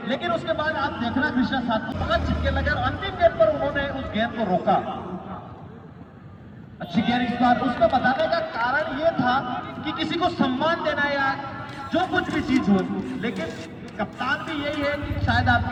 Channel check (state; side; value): identical; both; correlation 1.00